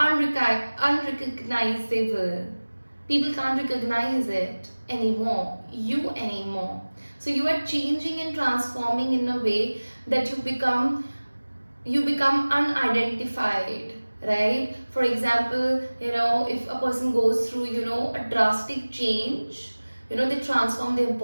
People can't recognize it anymore, you anymore. So you are changing and transforming in a way that you become unidentified, right? For example, if a person goes through, a drastic change, they transform their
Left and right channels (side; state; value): both; inverted; correlation -1.00